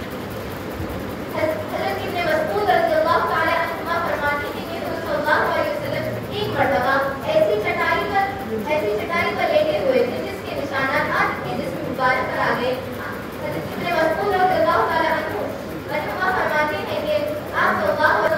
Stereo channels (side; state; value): both; identical; correlation 1.00